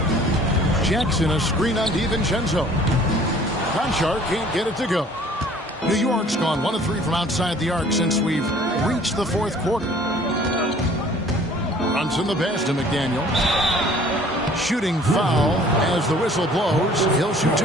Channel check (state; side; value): normal; both; correlation 0.53